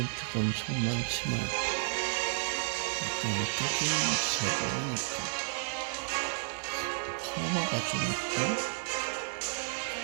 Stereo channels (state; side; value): silent; left; 56 dB below the other